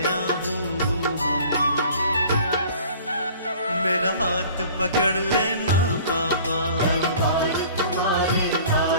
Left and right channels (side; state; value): both; inverted; correlation -0.48